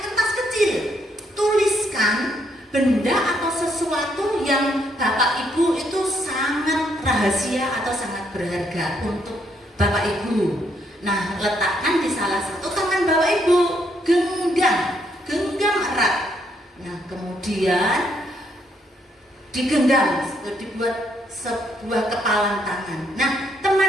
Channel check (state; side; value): normal; both; correlation 0.73